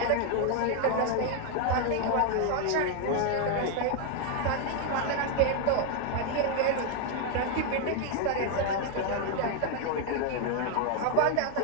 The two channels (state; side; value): different; both; correlation 0.01